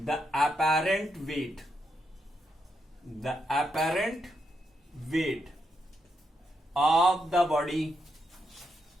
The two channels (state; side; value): normal; both; correlation 0.81